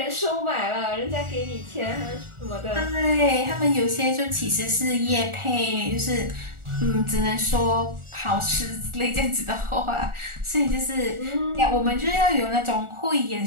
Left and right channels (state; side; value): late; left; 1.4 ms